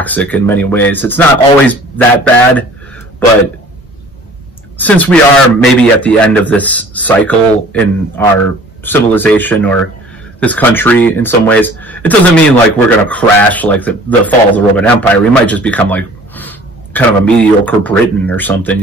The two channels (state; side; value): normal; both; correlation 0.49